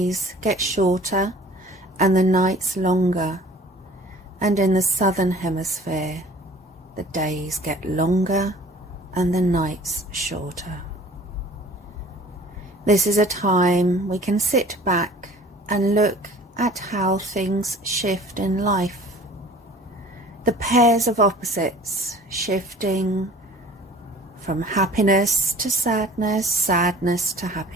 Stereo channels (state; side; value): normal; both; correlation 0.48